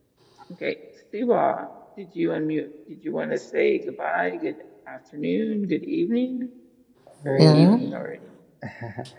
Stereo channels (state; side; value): identical; both; correlation 1.00